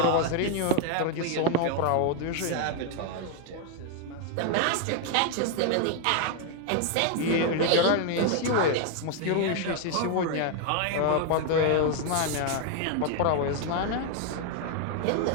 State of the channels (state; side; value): different; both; correlation 0.01